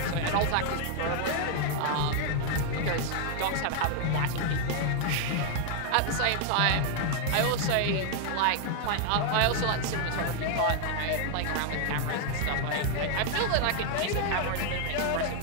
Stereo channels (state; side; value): different; both; correlation 0.00